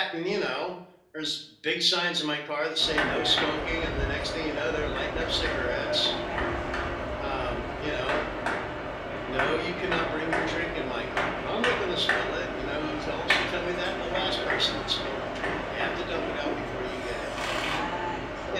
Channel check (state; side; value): identical; both; correlation 1.00